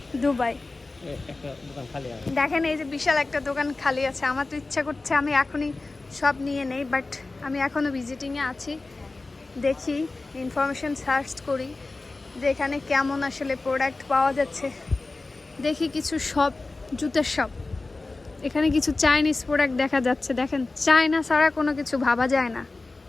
Dubai. দেখেন, এই যে বিশাল একটা দোকান খালি আছে। আমার তো ইচ্ছা করছে আমি এখনই সব নিয়ে নেই, বাট আমি এখনও ভিজিটিংয়ে আছি। দেখি, ইনফরমেশন সার্চ করি যে এখানে কেমন আসলে প্রোডাক্ট পাওয়া যাচ্ছে। দেখি কিছু শপ, জুতের শপ। এখানে কিছু চাইনিজ প্রোডাক্ট দেখা যাচ্ছে। দেখেন, চায়না ছাড়া কোনো কিছু ভাবা যায় না।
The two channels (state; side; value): quieter; right; 3.4 dB